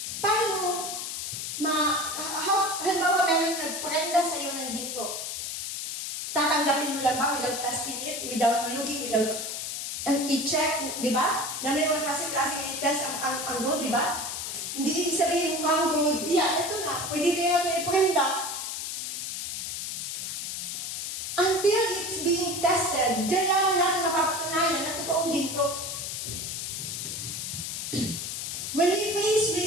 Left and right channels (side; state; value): left; noise; hiss, 4 dB below the sound